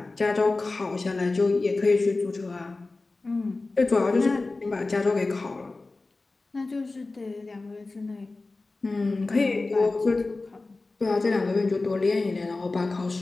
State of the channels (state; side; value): quieter; right; 3.4 dB